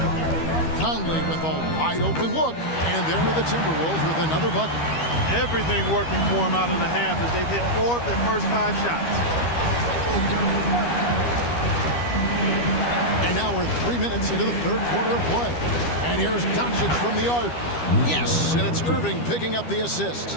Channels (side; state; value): right; late; 12 ms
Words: Conley with a wide open look. And there are the Timberwolves with another bucket. Everything working for them out of the half as they've hit 4 of their first 5 shots. And now we're 3 minutes into the third quarter of play. And here's Doncic from the arc. Yes, and it's Irving picking up the